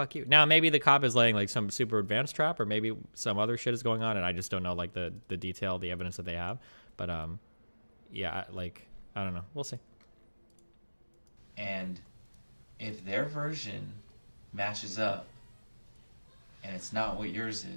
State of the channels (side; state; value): both; inverted; correlation -1.00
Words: you. Now, maybe the cop is laying like some super advanced trap, or maybe some other shit is going on, and I just don't know like the detail, the evidence that they have. But yeah, like I don't know. We'll see. And if their version matches up and it's not what yours